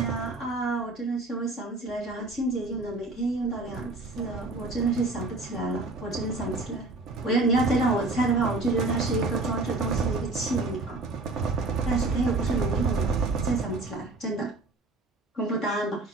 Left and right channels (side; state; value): left; quieter; 3.1 dB